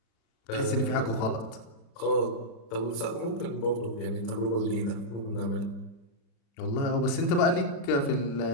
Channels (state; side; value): late; right; 36 ms